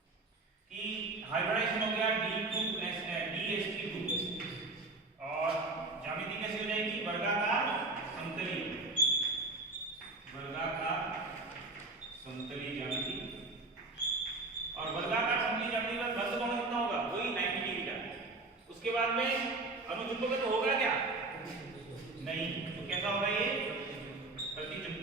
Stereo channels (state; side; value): quieter; left; 3.3 dB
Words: कि हाइब्रिडाइजेशन हो गया DSP2 और ज्यामिति कैसे हो जाएगी? वर्गाकार समतली, वर्गाकार समतली ज्यामिति। और वर्गाकार समतली ज्यामिति का बंध कोण कितना होगा? वही 90 डिग्री का। उसके बाद में अनुचुंबक तो होगा क्या? नहीं। तो कैसा होगा ये?